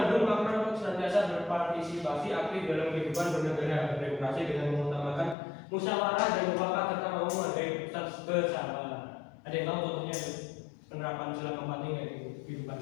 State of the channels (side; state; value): right; drops out; at 5.4 s